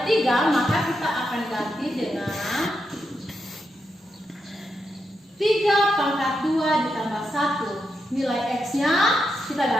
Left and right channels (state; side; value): normal; both; correlation 0.85